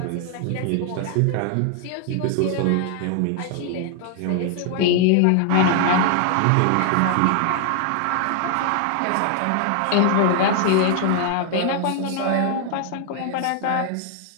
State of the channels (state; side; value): different; both; correlation 0.00